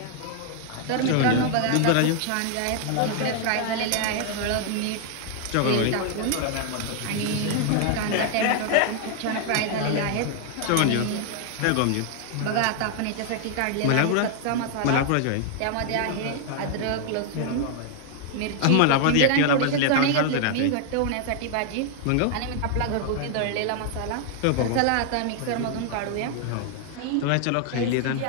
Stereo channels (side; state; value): both; different; correlation 0.00